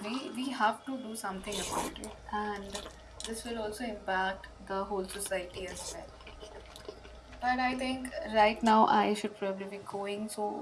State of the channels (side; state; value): both; identical; correlation 1.00